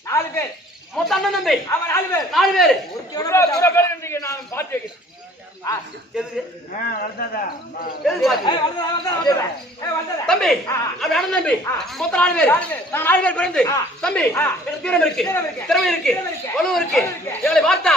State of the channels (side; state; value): both; normal; correlation 0.53